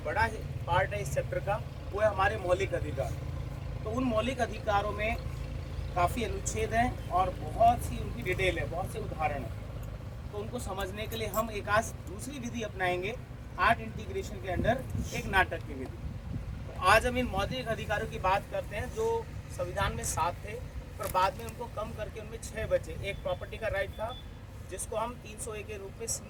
बड़ा पार्ट है इस चैप्टर का, वो है हमारे मौलिक अधिकार। तो उन मौलिक अधिकारों में काफ़ी अनुच्छेद हैं और बहुत सी उनकी डिटेल है, बहुत से उदाहरण हैं। तो उनको समझने के लिए हम एक आज दूसरी विधि अपनाएंगे आर्ट इंटीग्रेशन के अंडर, एक नाटक की विधि। तो आज हम इन मौलिक अधिकारों की बात करते हैं जो संविधान में 7 थे, पर बाद में उनको कम करके उनमें 6 बचे। एक प्रॉपर्टी का राइट था, जिसको हम 301 के रूप में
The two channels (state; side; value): identical; both; correlation 1.00